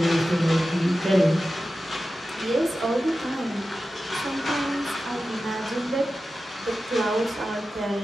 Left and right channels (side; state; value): both; normal; correlation 0.93